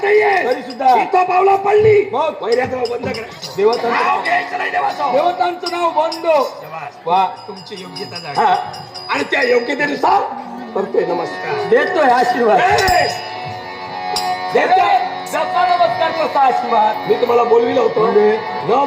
नाहीये तरी सुद्धा इथं पावला पडली वैऱ्याचं नाव बंद करायचं देवतांचं घ्यायचं नाही देवतांचं नाव बंद वा तुमची योग्यता झाली आणि त्या योग्यतेनुसार करतोय नमस्कार देतोय आशीर्वाद देतोय नमस्कार करता आशीर्वाद मी तुम्हाला बोलविलं होतं न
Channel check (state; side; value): identical; both; correlation 1.00